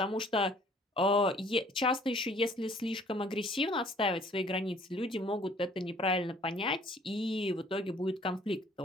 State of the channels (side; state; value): both; normal; correlation 0.57